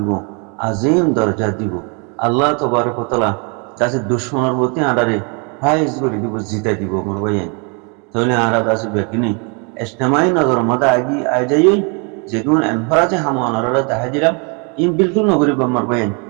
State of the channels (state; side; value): quieter; left; 34.7 dB